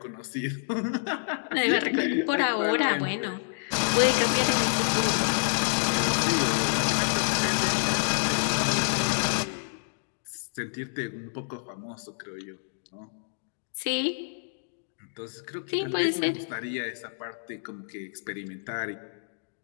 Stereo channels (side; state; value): right; silent; digital silence